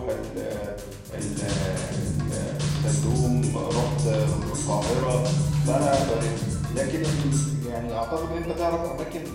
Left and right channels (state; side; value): identical; both; correlation 1.00